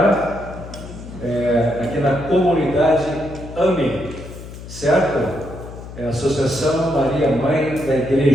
aqui na comunidade AME, certo? É a Associação Maria Mãe da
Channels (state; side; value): noise; left; hum, 13 dB below the sound